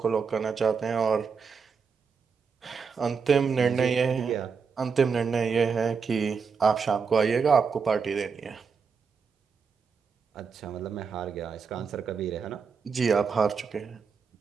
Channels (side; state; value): left; quieter; 5.6 dB